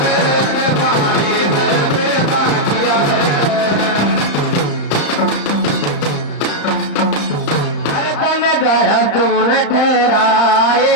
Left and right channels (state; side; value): late; right; 35 ms